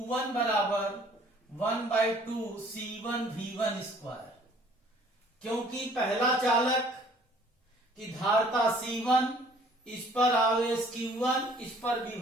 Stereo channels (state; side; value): normal; both; correlation 0.56